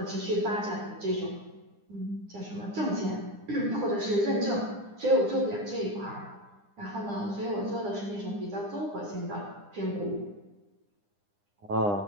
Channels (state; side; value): late; left; 9.9 ms